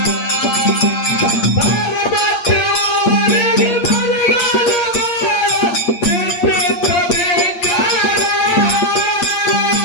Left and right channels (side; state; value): right; late; 8.5 ms